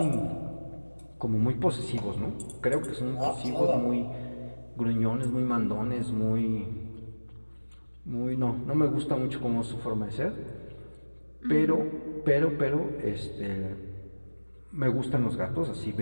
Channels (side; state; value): both; inverted; correlation -1.00